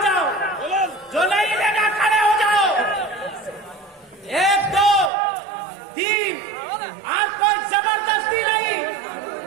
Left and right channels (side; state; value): left; drops out; at 5.1 s